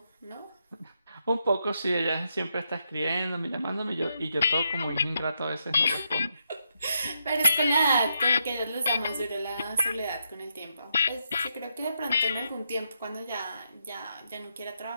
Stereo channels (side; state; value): both; inverted; correlation -0.80